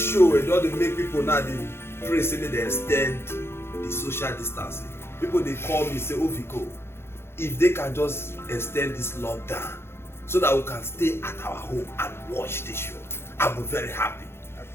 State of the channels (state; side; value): late; right; 0.12 ms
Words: show, it doesn't make people now, they pray saying they extend the social distancing. People, they call me, say, oh Vico, if they can just extend this lockdown so that we can stay at our home and watch this show, I'll be very happy. I